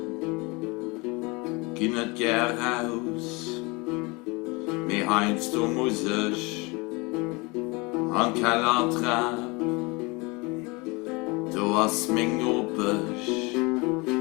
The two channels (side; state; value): right; quieter; 26.8 dB